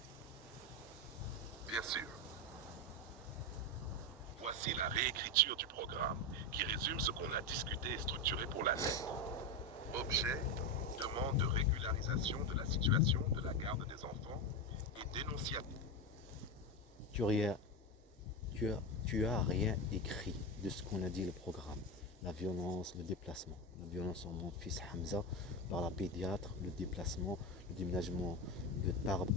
Bien sûr. Voici la réécriture du programme qui résume ce qu'on a discuté et structuré pour la lettre. Objet, demande de régularisation de la situation de la garde des enfants et dénonciation. Tu as rien écrit de ce qu'on a dit le programme. La violence, le déplacement. La violence sur mon fils Hamza par la pédiatre, le déplacement, le déménagement de Tarbes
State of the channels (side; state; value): both; normal; correlation 0.15